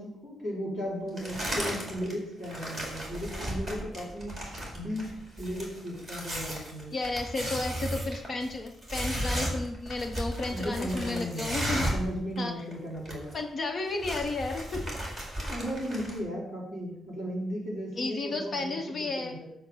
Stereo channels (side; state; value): both; normal; correlation 0.83